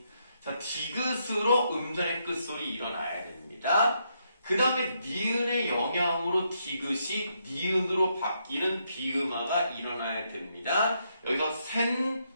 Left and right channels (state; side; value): inverted; both; correlation -0.77